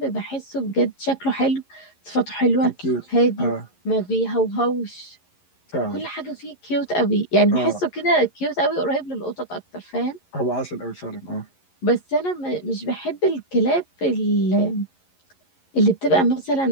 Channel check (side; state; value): right; late; 11 ms